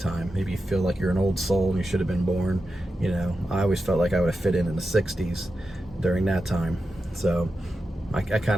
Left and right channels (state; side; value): normal; both; correlation 0.90